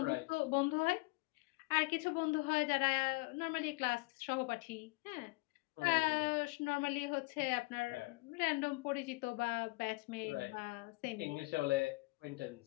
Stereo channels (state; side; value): quieter; right; 25.8 dB